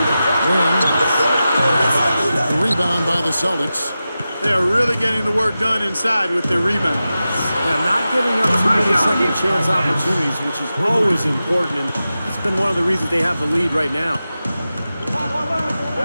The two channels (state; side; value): inverted; both; correlation -0.93